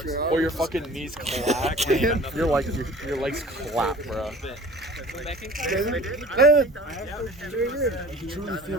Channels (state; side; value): normal; both; correlation 0.45